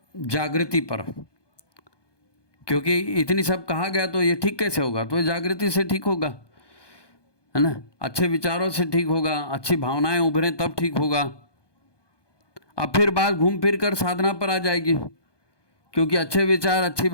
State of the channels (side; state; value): right; late; 1.2 ms